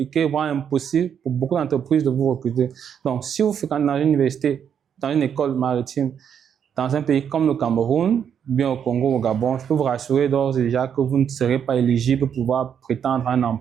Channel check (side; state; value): left; quieter; 8.1 dB